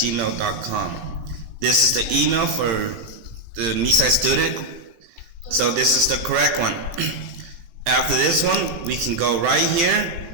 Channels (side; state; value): left; late; 18 ms